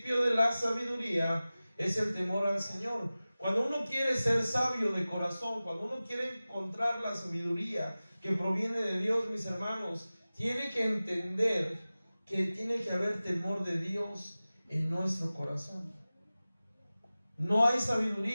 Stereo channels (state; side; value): inverted; both; correlation -0.97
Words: de la sabiduría es el temor al Señor. Cuando uno quiere ser sabio de corazón, cuando uno quiere encontrar la sabiduría que proviene de Dios, mis hermanos, tiene que entender que tiene que haber temor de Dios en nuestro corazón. No hay